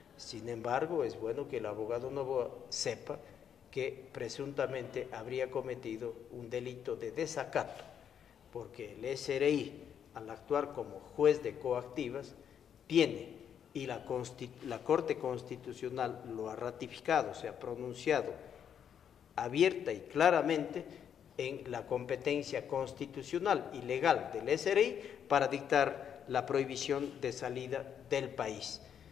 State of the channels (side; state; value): right; quieter; 8.5 dB